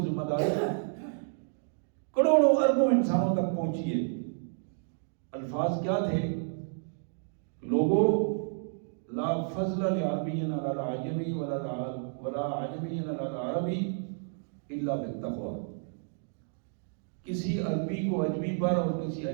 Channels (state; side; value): silent; left; digital silence